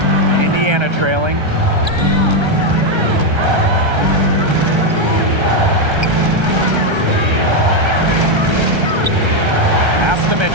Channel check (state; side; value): late; left; 1.3 ms